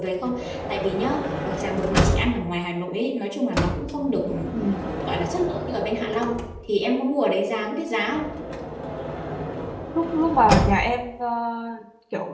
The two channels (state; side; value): identical; both; correlation 1.00